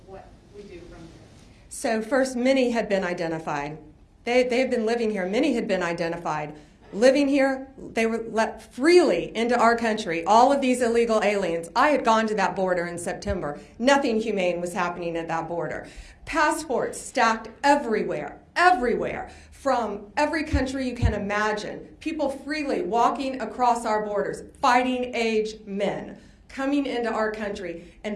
what we do from there. So first, many had been identified. They had been living here. Many had been identified. Living here, they were let freely into our country. All of these illegal aliens. I had gone to that border in September. Nothing humane was happening at that border. Passports stacked everywhere, everywhere, from every country you can imagine. People freely walking across our borders, fighting age men coming into our country.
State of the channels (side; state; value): both; identical; correlation 1.00